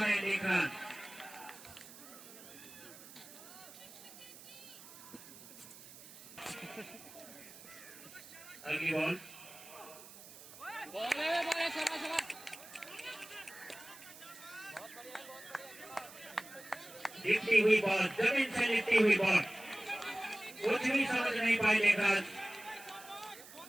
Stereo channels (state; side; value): noise; right; hiss, 17 dB below the sound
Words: देख रन। अगली बॉल, लिपटी हुई बॉल, जमीन से लिपटी हुई बॉल, कुछ भी समझ नहीं पाए लेकर।